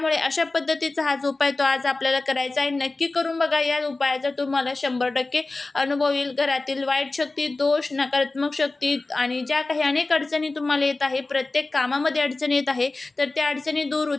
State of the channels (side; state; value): right; quieter; 3.3 dB